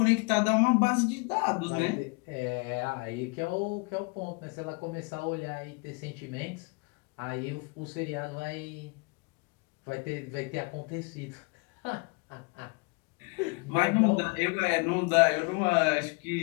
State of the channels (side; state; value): right; quieter; 30.6 dB